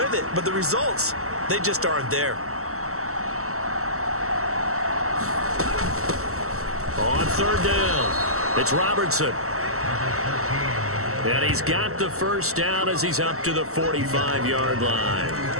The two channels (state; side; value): late; left; 0.63 ms